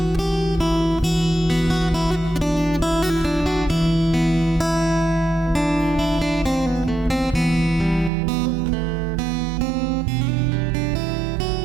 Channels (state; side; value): drops out; left; at 8.1 s